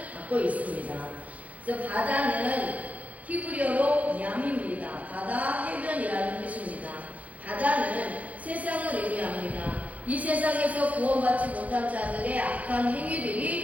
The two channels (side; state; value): left; late; 0.070 ms